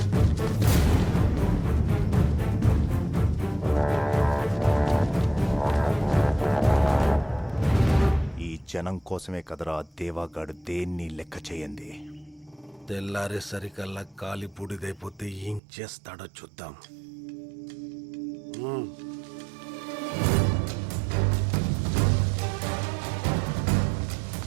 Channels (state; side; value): drops out; left; at 15.6 s